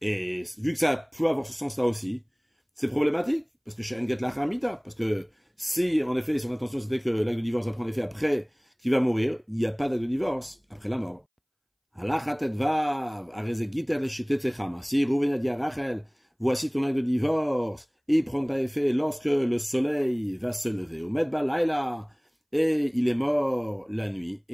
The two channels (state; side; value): identical; both; correlation 1.00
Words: Et vu que ça peut avoir ce sens-là aussi, c'est problématique, parce que chez Enget l'achamita, parce que si, en effet, son intention c'était que l'acte de divorce va prendre effet après qu'il va mourir, il n'y a pas d'acte de divorce après la mort. Si Rouven a dit à Rachel, voici ton acte de divorce, et il prendra effet lorsque le soleil va se lever. Au Medba Laila, et il est mort la nuit.